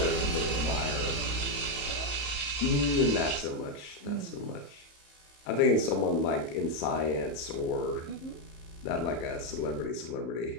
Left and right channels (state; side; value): late; right; 35 ms